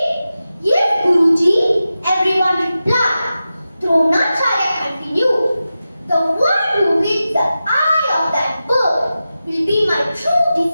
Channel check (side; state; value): both; inverted; correlation -0.93